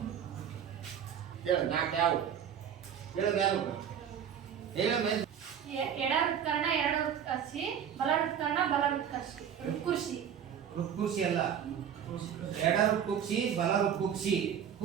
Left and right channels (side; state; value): left; quieter; 8.6 dB